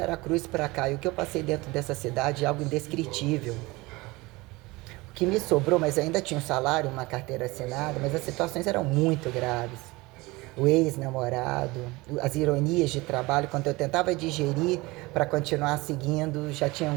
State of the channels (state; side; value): quieter; left; 22.3 dB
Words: para cá, e o que eu passei dentro dessa cidade é algo indescritível. O que me sobrou, mas eu ainda tinha um salário, uma carteira assinada, mas as situações eram muito graves. O ex-namorado, as ironias de trabalho, quando eu tentava digerir para continuar seguindo, já